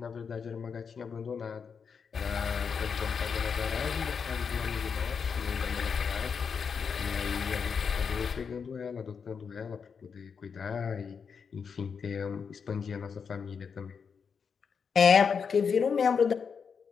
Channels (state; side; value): quieter; right; 6.2 dB